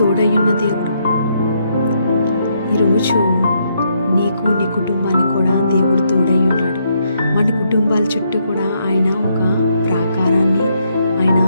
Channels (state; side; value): inverted; both; correlation -0.75